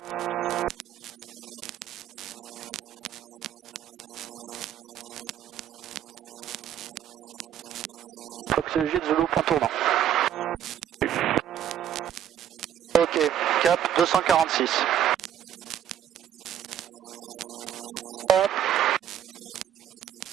Fox Jet Zulu, point tournant. Ok, cap 246. Hop.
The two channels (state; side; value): quieter; left; 10.1 dB